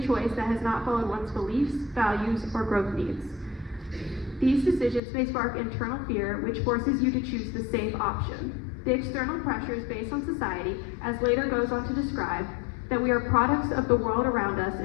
choice that has not followed one's beliefs, values, or growth needs. These decisions may spark internal fear, which forces you to choose the safe option. The external pressures based on society, as later goes on to describe, that we are products of the world around us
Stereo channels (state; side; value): drops out; right; at 5.0 s